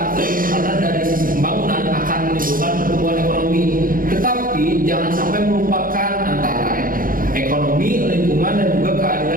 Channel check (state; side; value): late; left; 0.41 ms